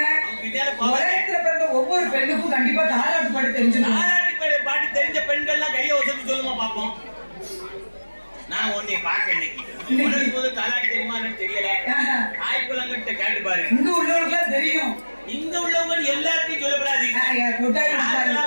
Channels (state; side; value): inverted; both; correlation -1.00